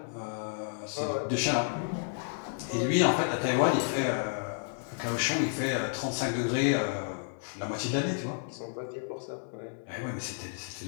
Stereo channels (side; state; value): right; silent; digital silence